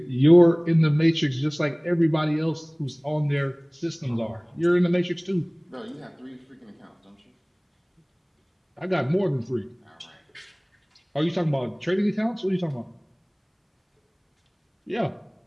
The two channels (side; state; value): both; identical; correlation 1.00